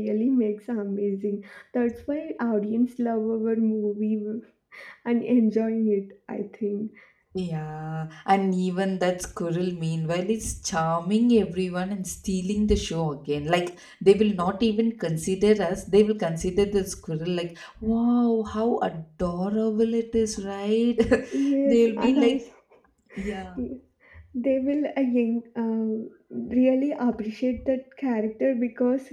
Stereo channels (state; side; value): identical; both; correlation 1.00